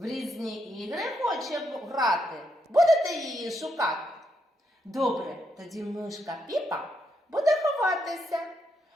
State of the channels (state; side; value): normal; both; correlation 0.79